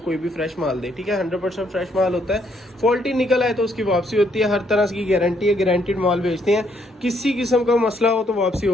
भी फ्रेश माल दे, ठीक है। 100% फ्रेश माल होता है। फॉल्टी निकल आए तो उसकी वापसी होती है, हर तरह की गारंटी है, गारंटीड माल बेचते हैं। किसी किस्म का मसला हो तो वापसी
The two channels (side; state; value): both; normal; correlation 0.71